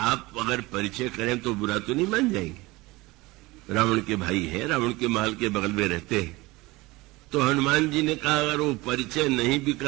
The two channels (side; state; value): left; quieter; 21.7 dB